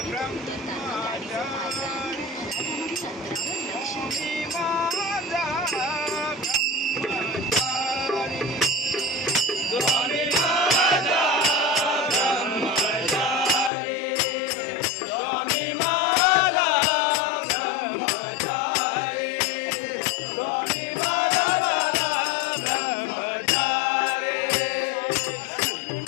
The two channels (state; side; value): drops out; right; at 13.7 s